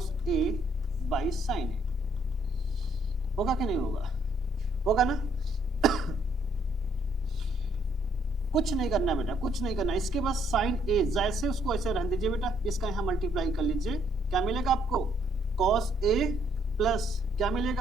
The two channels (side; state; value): both; normal; correlation 0.69